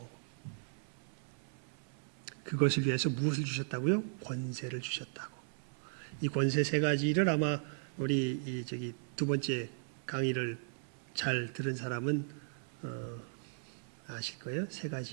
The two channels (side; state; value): left; silent; 53 dB below the other